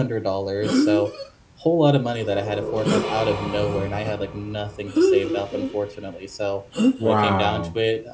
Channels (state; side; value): identical; both; correlation 1.00